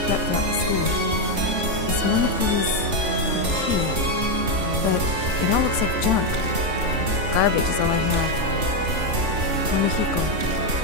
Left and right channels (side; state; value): left; late; 3.4 ms